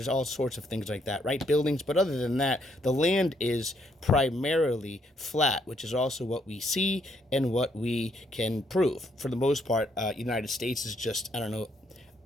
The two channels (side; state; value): both; normal; correlation 0.72